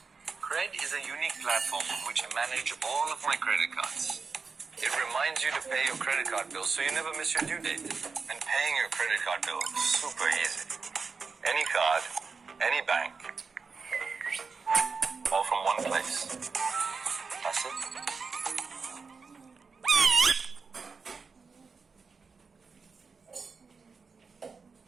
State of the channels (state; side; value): quieter; left; 4.9 dB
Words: Cred is a unique platform on which I manage all of my credit cards. It reminds you to pay your credit card bill so you never miss your due date. And paying your credit card bill is super easy. Any card, any bank, all from one place. That's it.